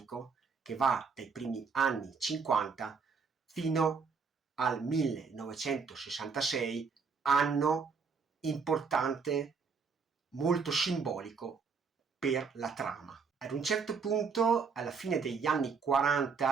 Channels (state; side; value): quieter; left; 5.3 dB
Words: che va dai primi anni 50 fino al 1966, anno importante, molto simbolico per la trama. Ad un certo punto, alla fine degli anni